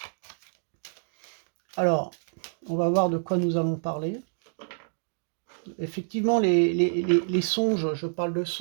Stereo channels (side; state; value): left; silent; digital silence